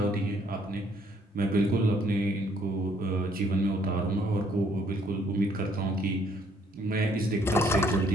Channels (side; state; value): both; normal; correlation 0.65